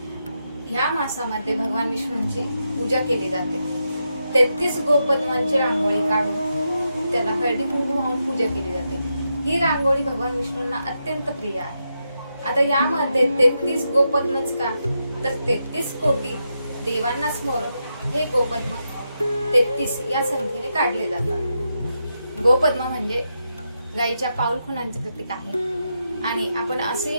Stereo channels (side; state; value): both; inverted; correlation -0.85